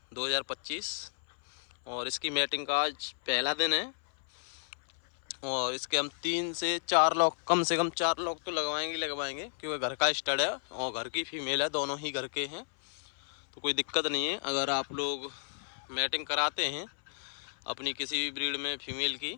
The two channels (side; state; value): right; silent; 56 dB below the other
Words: 2025। और इसकी मैटिंग का आज पहला दिन है। और इसके हम 3 से 4 लॉक, कम से कम 4 लॉक तो लगवाएंगे, क्योंकि घर का स्टड है और घर की फीमेल है, दोनों ही घर के हैं, तो कोई दिक्कत नहीं है। अगर आप लोग मैटिंग कराते हैं अपनी किसी भी ब्रीड में फीमेल की,